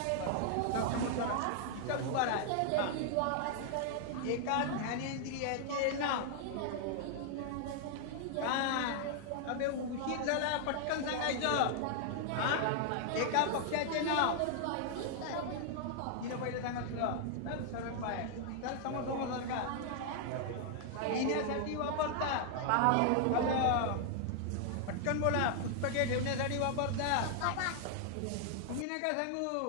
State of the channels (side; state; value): both; different; correlation 0.00